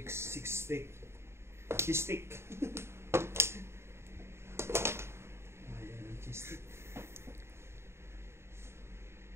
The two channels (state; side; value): late; left; 0.12 ms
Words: 6 stick. Cheese stick. Ayan ang cheese stick.